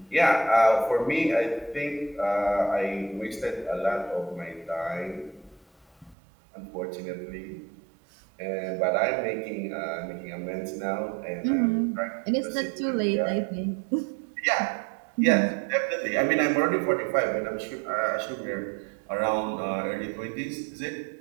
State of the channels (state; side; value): drops out; left; at 6.2 s